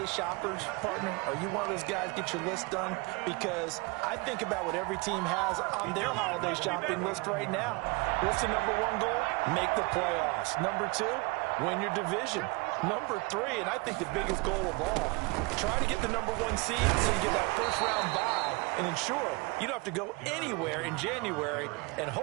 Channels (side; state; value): left; quieter; 28.0 dB